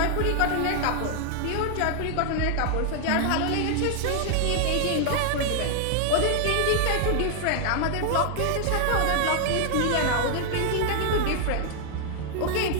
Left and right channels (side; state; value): both; different; correlation 0.00